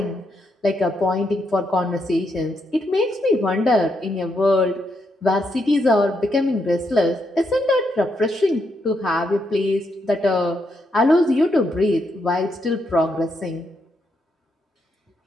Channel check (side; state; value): both; normal; correlation 0.79